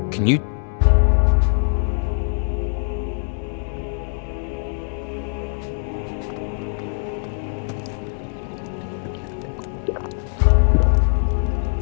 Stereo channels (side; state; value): right; silent; digital silence